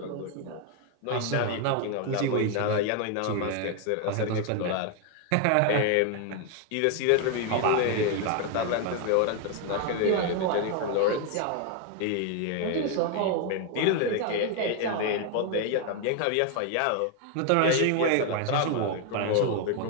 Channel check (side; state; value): both; different; correlation 0.01